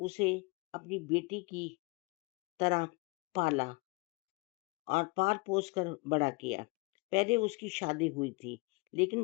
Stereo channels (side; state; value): right; quieter; 28.0 dB